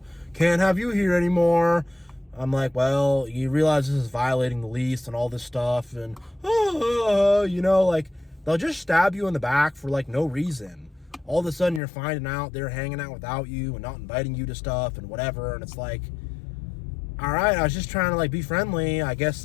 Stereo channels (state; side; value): drops out; right; at 11.8 s